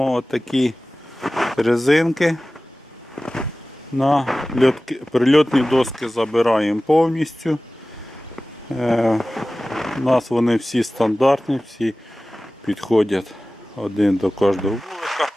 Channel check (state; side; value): normal; both; correlation 0.97